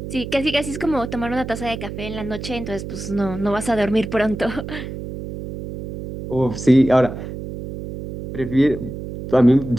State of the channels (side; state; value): right; noise; hum, 8 dB below the sound